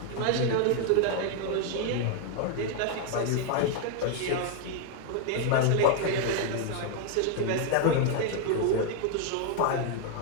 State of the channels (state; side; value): different; both; correlation 0.00